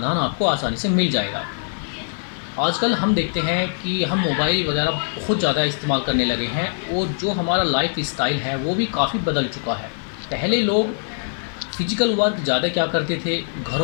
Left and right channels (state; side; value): silent; right; digital silence